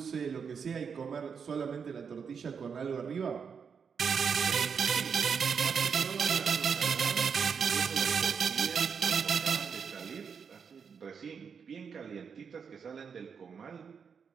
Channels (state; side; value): quieter; left; 6.4 dB